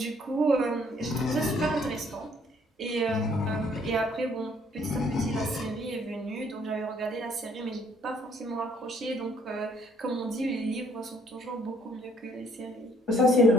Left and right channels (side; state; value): both; normal; correlation 0.63